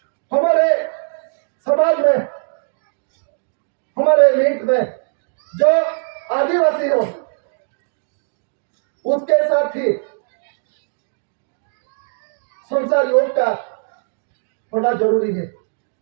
हमारे समाज में, हमारे मीट में जो आदिवासी हो उसके साथ ही संसार योग का होना जरूरी है।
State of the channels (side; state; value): left; silent; digital silence